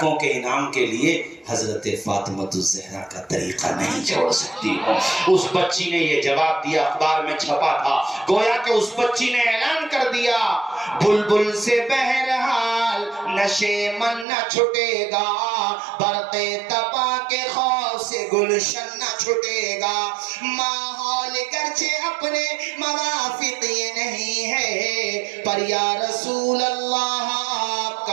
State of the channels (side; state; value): left; drops out; at 14.2 s